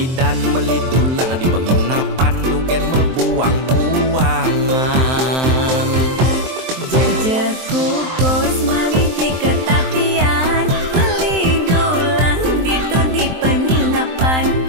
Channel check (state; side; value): late; left; 23 ms